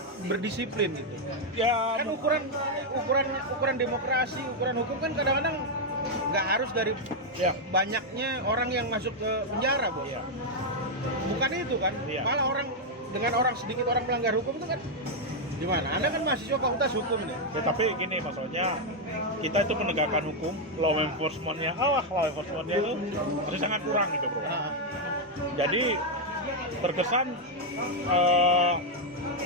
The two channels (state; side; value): normal; both; correlation 0.00